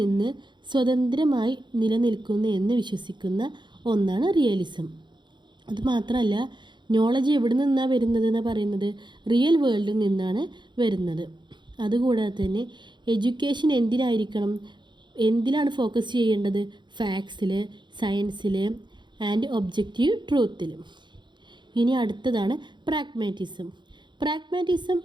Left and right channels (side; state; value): left; late; 0.22 ms